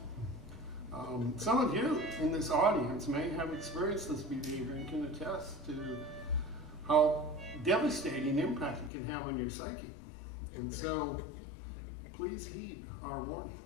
Some of you in this audience may have experienced this behavior and can attest to how devastating impact it can have on your psyche. And so, please heed our warning.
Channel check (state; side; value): drops out; right; at 8.9 s